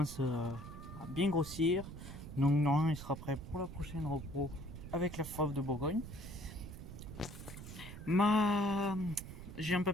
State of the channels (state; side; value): noise; right; rumble, 11 dB below the sound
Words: à bien grossir. Donc normalement il sera prêt pour la prochaine repos avec la Fauve de Bourgogne. J'ai un